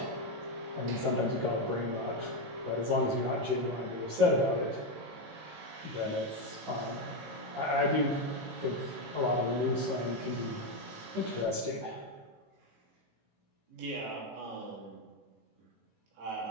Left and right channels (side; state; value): left; late; 18 ms